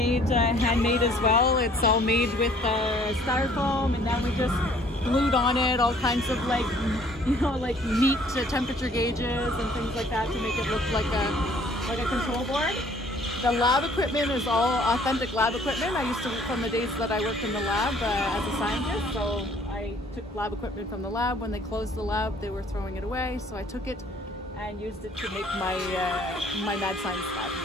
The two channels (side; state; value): both; normal; correlation 0.58